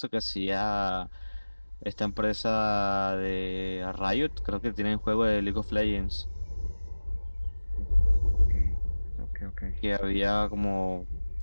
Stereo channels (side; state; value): both; inverted; correlation -1.00